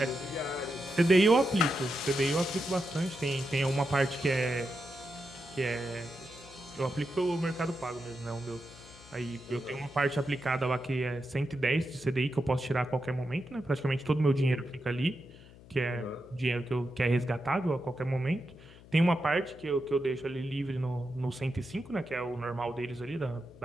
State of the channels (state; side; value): noise; left; hum, 21 dB below the sound